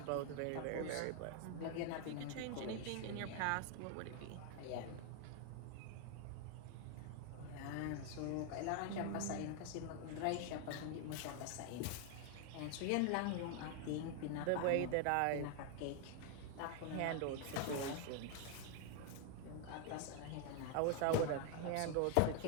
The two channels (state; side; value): different; both; correlation 0.00